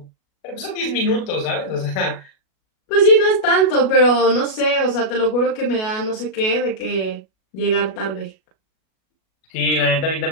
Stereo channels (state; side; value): late; right; 37 ms